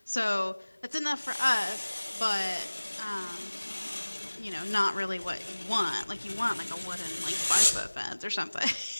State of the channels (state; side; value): inverted; both; correlation -1.00